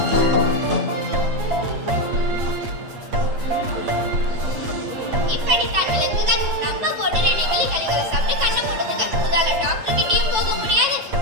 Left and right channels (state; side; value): late; left; 8.7 ms